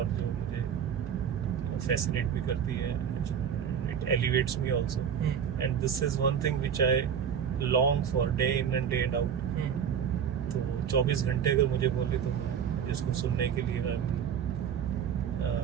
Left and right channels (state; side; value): quieter; left; 7.9 dB